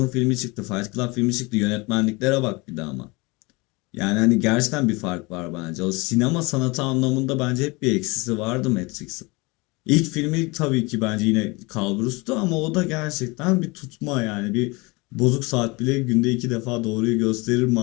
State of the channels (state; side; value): quieter; right; 25.7 dB